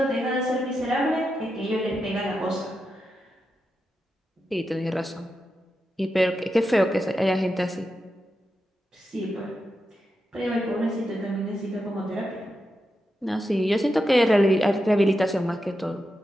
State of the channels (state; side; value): normal; both; correlation 0.88